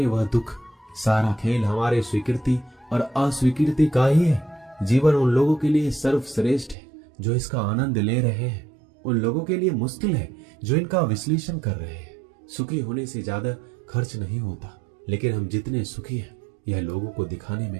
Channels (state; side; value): drops out; left; at 6.8 s